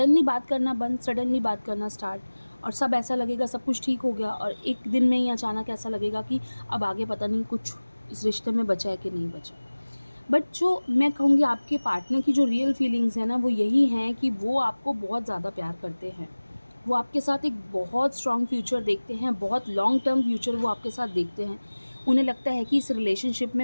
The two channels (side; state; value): both; inverted; correlation -1.00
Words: बात करना बंद, सडनली बात करना स्टार्ट, और सब ऐसा लगेगा सब कुछ ठीक हो गया, और एक दिन में ही अचानक ऐसा लगेगा कि अब आगे पता नहीं कुछ इस रिश्ते में बचा है कि नहीं बचा। बट जो मैं कहूँगी आपके पार्टनर की जो रियल फीलिंग्स हैं ना, वो यही हैं कि वो आपको बहुत ज़्यादा प्यार करते हैं। वो आपके साथ एक बहुत स्ट्रॉन्ग फ्यूचर देखते हैं, बहुत लॉन्ग टर्म फ्यूचर वो आपके साथ देखते हैं। उन्हें लगता है कि इस रिलेशनशिप